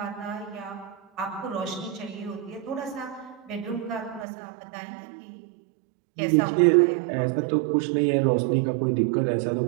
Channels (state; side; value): drops out; left; at 4.2 s